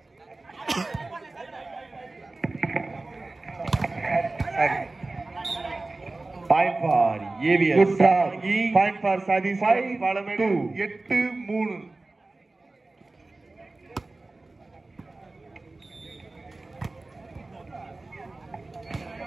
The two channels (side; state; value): left; quieter; 3.2 dB